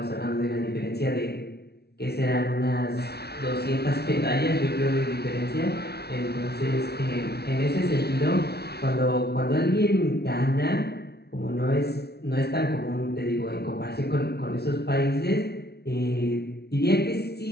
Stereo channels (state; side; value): late; right; 0.47 ms